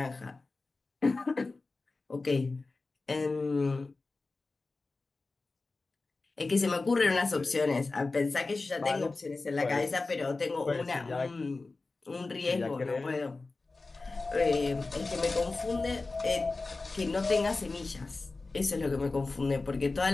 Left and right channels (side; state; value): right; quieter; 3.6 dB